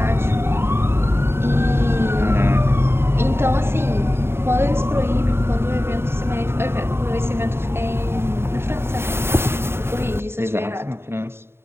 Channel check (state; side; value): late; left; 0.12 ms